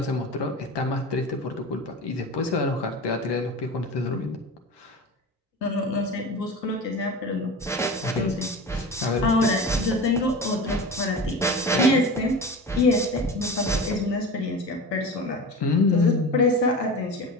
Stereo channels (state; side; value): normal; both; correlation 0.31